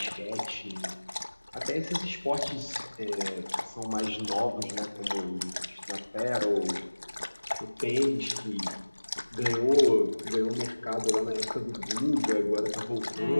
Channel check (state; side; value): inverted; both; correlation -1.00